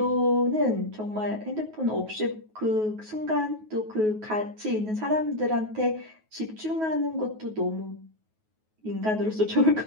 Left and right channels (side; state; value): left; late; 9.3 ms